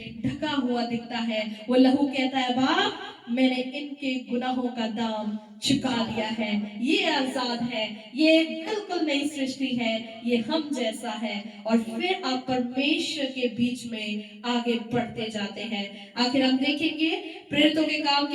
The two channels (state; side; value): identical; both; correlation 1.00